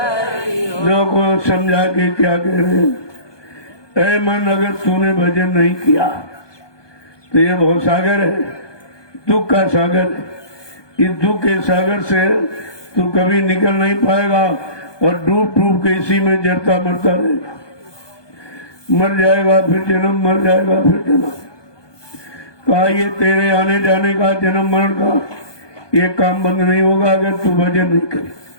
हो। लोगों को समझा के क्या कह रहे हैं। ऐ मन, अगर तूने भजन नहीं किया तो ये बहुत सागर है, दुख का सागर है। इस दुख के सागर से तू कभी निकल नहीं पाएगा और डूब डूब के इसी में जरता मरता रहेगा। मर जाएगा फिर जन्म, मर जाएगा फिर जन्म। कहा ये तेरे आने जाने का, जन्म मरण का ये काम बंद नहीं होगा अगर तू भजन नहीं करे।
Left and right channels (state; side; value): late; right; 1.2 ms